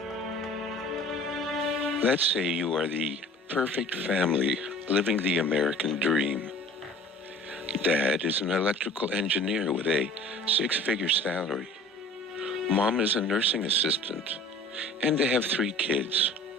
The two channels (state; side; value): normal; both; correlation 0.46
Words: Let's say you are the perfect family living the American dream. Dad is an electrical engineer with a 6-figure salary. Mom is a nursing assistant, and they have 3 kids,